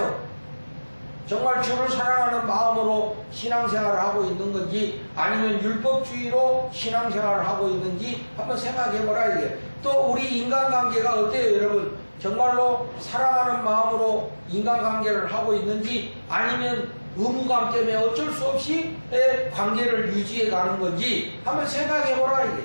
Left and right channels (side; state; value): both; inverted; correlation -1.00